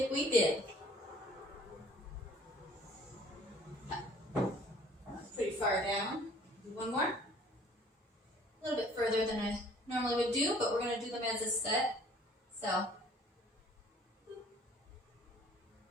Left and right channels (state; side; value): normal; both; correlation 0.54